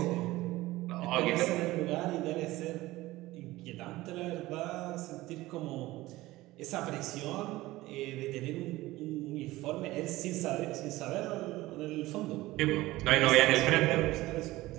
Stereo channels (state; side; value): quieter; left; 18.2 dB